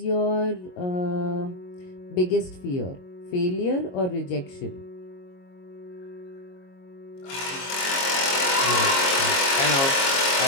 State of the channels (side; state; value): right; late; 22 ms